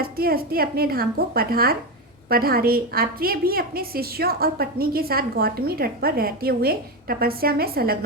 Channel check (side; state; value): both; normal; correlation 0.14